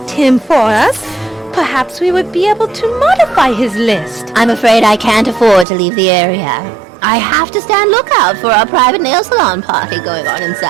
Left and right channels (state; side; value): drops out; left; at 5.7 s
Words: him for us, perhaps we would be able to modify his list. I'm afraid I can't afford to leave the area. I have to stand lookout for our private nail salon party going on